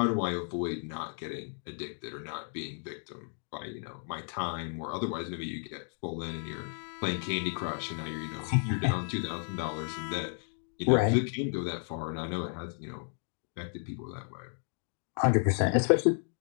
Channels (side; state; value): right; silent; 56 dB below the other